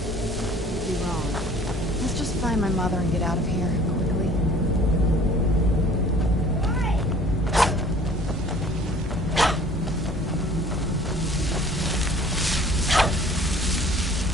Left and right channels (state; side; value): normal; both; correlation 0.51